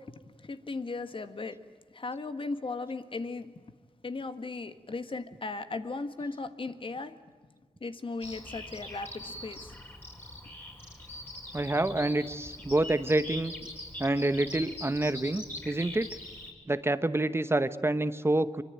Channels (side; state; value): both; normal; correlation 0.81